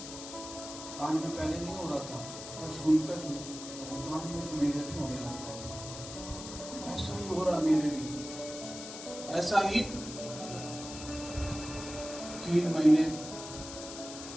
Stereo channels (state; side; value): noise; left; hiss, 11 dB below the sound